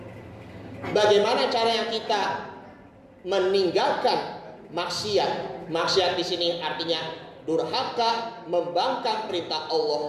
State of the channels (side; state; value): both; identical; correlation 1.00